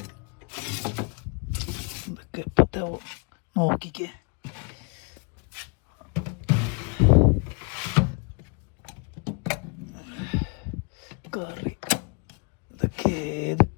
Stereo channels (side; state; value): right; quieter; 35.3 dB